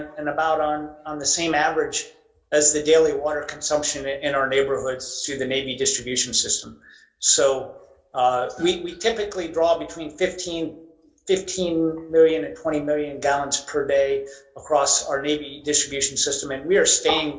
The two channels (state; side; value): identical; both; correlation 1.00